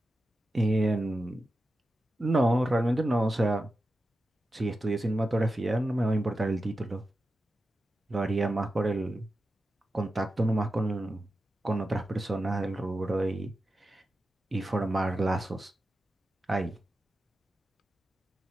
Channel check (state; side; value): normal; both; correlation 0.91